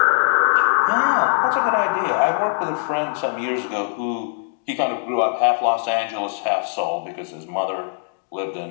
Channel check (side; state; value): right; silent; 65 dB below the other